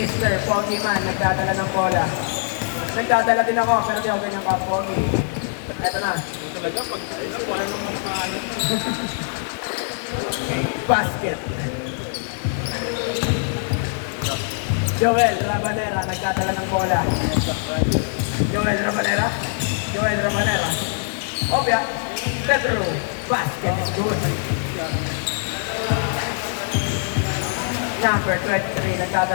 Pokemon, nagdadala ng bola. Nagdadala din ako, pero di ako ganyan ka-pogi. Eto na. Talaga, pag wala namang kaanit. Basket. Joel Rabanera, nagdadala ng bola. Joel Rabanera. Joel Rabanera. Obya. Pedro. Basket is good. Number 23,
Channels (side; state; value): right; silent; digital silence